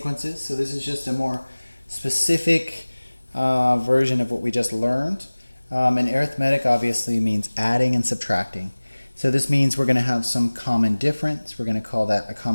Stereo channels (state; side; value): inverted; both; correlation -1.00